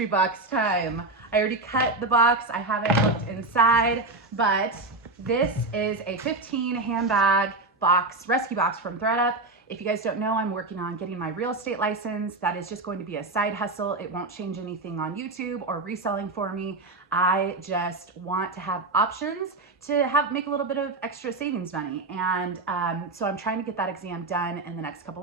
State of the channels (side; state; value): left; quieter; 3.2 dB